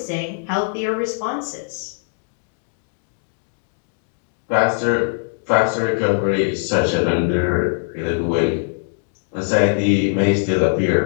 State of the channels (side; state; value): right; silent; 65 dB below the other